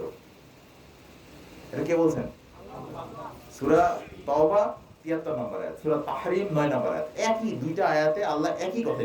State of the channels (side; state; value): both; identical; correlation 1.00